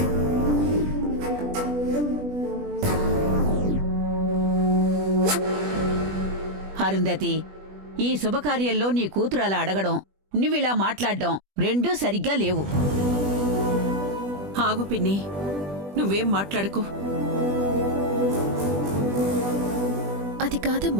Arundhati, ఈ శుభకార్యంలో నీ కూతురు అలా అడగడం, నువ్విలా మాట్లాడడం రెండూ సరిగ్గా లేవు. ఆగు పిన్ని, నువ్వేం మాట్లాడకు. అది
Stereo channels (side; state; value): left; late; 20 ms